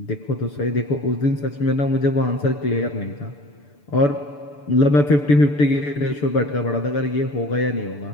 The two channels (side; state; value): right; late; 6.9 ms